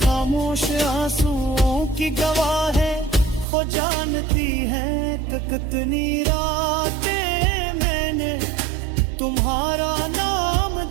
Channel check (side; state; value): left; drops out; at 3.5 s